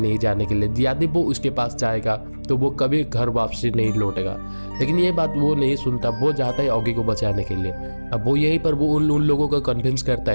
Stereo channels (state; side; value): inverted; both; correlation -1.00